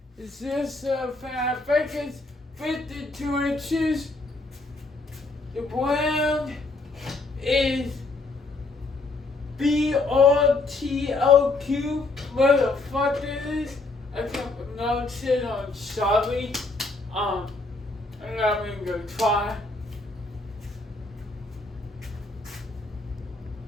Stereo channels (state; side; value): quieter; right; 3.3 dB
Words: is this fan. I think it's 52 inches. The brand is BRTLQ. What the fuck it is? I can't pronounce it. I'm sorry. I'm not even gonna try.